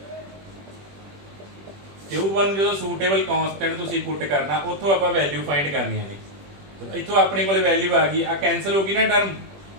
Q1 जो सूटेबल कॉन्स्टेंट तुसीं पुट करना, उत्थों आप वैल्यू फाइंड करनी है। तो इत्थों अपने को वैल्यू आ गई, आ कैंसल होगी ना टर्म,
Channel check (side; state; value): left; late; 21 ms